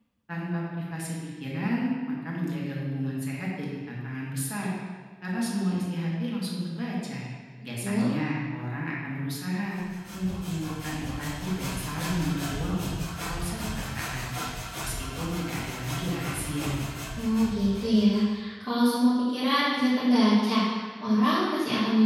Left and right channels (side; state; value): both; identical; correlation 1.00